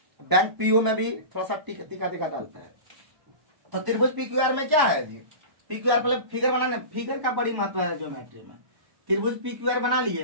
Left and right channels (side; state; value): left; late; 1.1 ms